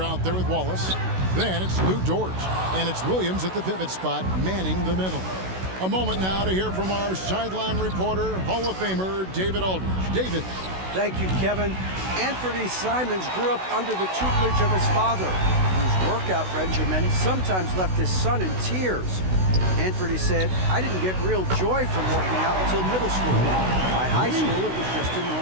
there with Wallace. Then it's Lou Dort, and it's Williams at the pivot spot, manning the middle. A moment now to hear from our sideline reporter, Hall of Famer David Aldridge. David. Thank you, Kevin. Anthony Simons grew up under the tutelage of his father, whose workout regimen sometimes left his son in tears. Anthony said, "I didn't get real joy from working out until middle school. By high school, it was just a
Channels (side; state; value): left; late; 16 ms